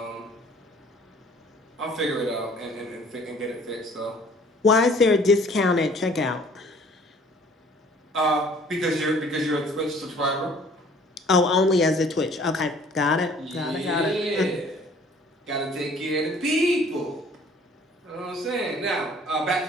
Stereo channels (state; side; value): normal; both; correlation 0.54